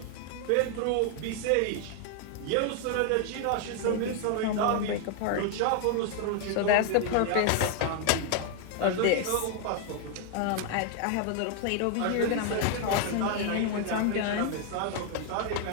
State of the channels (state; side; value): different; both; correlation 0.00